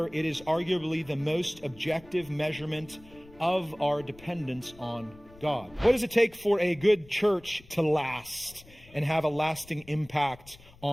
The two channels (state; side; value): noise; left; rumble, 23 dB below the sound